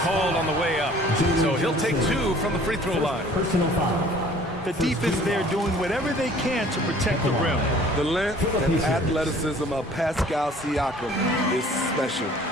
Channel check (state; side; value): normal; both; correlation 0.52